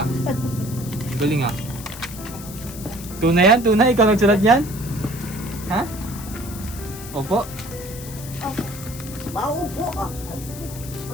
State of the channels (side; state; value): left; noise; hiss, 13 dB below the sound